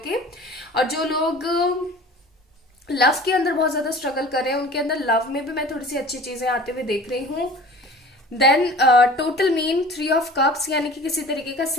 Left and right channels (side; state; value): both; normal; correlation 0.43